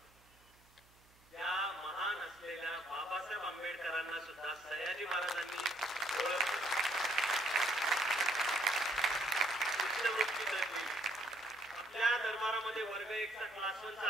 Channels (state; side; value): noise; right; hum, 29 dB below the sound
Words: त्या महान असलेल्या बाबासाहेब आंबेडकरांना सुद्धा सयाजी महाराजांनी ओळखलं. शिष्यवृत्ती दिली. आपल्या दरबारामध्ये वर्ग 1चा क्लास 1चा